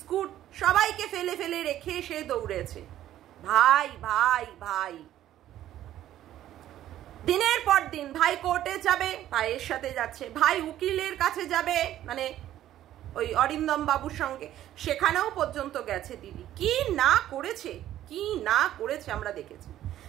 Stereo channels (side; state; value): left; quieter; 12.6 dB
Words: সবাইকে ফেলে ফেলে রেখে সে দৌড়েছে। ভাই ভাই ভাই, দিনের পর দিন ভাই কোর্টে যাবে, ভাইয়ের সাথে যাচ্ছে, ভাই উকিলের কাছে যাবে, মানে ওই অরিন্দম বাবুর সঙ্গে, সেখানেও পর্যন্ত গেছে দিদি। কি না করেছে, কি না করেছে আমরা দেখেছি,